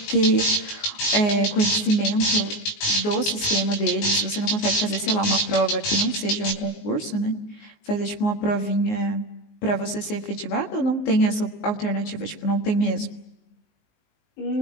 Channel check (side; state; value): right; late; 19 ms